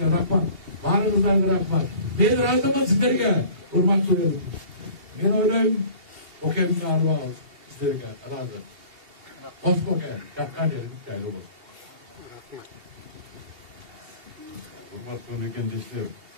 рахмат. Баарыңыздарга рахмат. Мен ыраазымын сиздерге, урматтуу элим. Мен ойлойм, Бокемдин арбагы сиздерге ыраазы. Кос Боке, жаккан жериң жайлуу болсун. Урматтуу мекендештер,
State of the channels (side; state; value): left; late; 2.8 ms